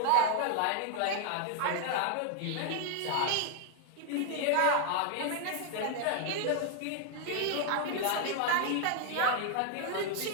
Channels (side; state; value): both; different; correlation 0.00